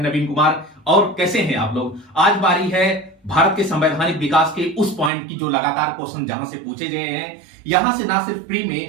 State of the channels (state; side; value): drops out; left; at 5.1 s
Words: नवीन कुमार। और कैसे हैं आप लोग? आज बारी है भारत के संवैधानिक विकास के उस पॉइंट की जो लगातार क्वेश्चन जहां से पूछे गए हैं। यहां से ना सिर्फ प्री